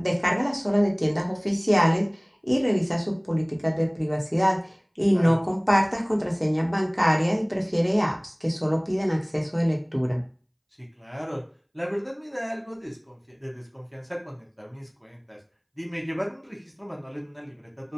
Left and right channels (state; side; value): identical; both; correlation 1.00